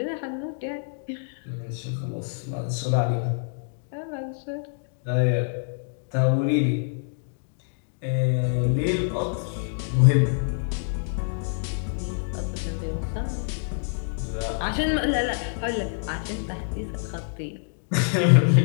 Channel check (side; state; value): right; silent; digital silence